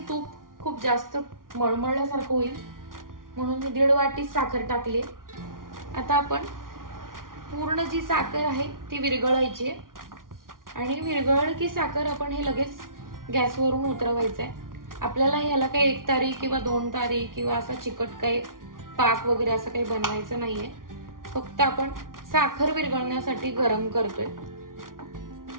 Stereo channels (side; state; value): left; late; 0.90 ms